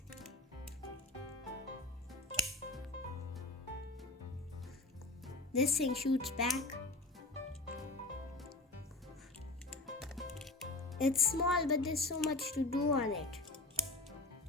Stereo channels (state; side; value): quieter; right; 3.0 dB